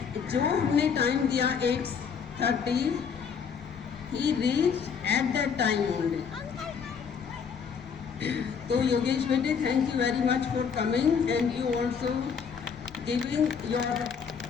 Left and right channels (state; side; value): quieter; right; 6.5 dB